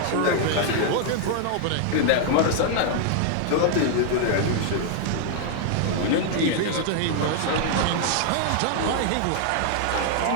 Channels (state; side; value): different; both; correlation 0.00